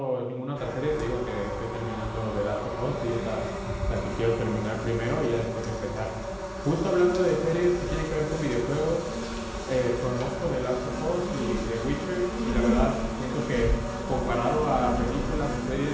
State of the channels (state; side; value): identical; both; correlation 1.00